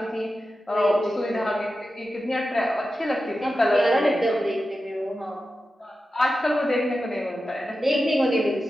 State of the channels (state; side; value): normal; both; correlation 0.92